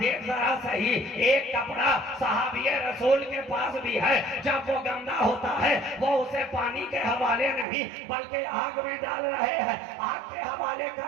जरा सही, एक कपड़ा सहाबिये रसूल के पास भी है, जब वो गंदा होता है वो उसे पानी के हवाले नहीं बल्कि आग में डाल रहे हैं, आग के हवाले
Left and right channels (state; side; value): drops out; left; at 7.7 s